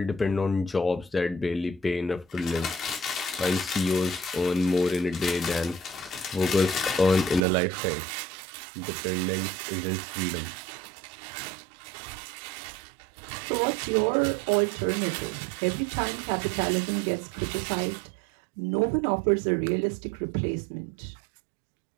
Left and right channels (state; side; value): drops out; left; at 7.4 s